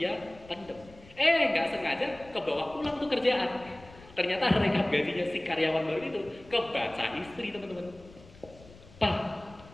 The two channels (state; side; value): noise; left; rumble, 22 dB below the sound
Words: pendem. Nggak sengaja kebawa pulang tuh kerjaan. Ternyata rekap gajinya si karyawan baru itu kebaca istri teman-teman. Pak,